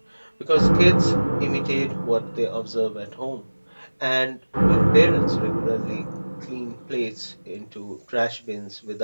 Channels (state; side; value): inverted; both; correlation -1.00